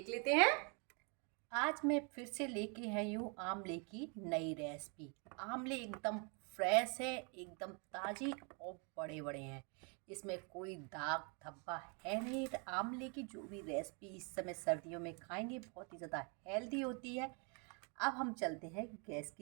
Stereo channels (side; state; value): left; quieter; 35.5 dB